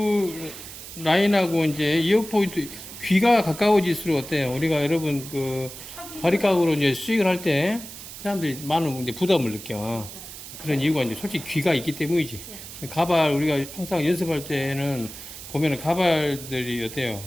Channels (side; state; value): right; noise; hiss, 13 dB below the sound